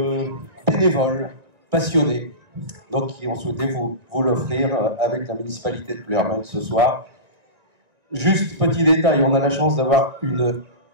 bénévoles passionnés, donc qui ont souhaité vous l'offrir avec la municipalité de Pleuhermel ce soir. Juste petit détail, on a la chance d'avoir une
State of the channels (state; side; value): late; left; 1.9 ms